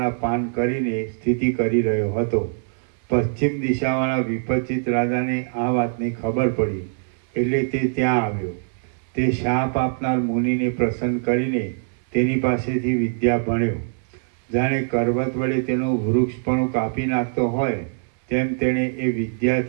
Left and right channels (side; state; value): left; silent; 64 dB below the other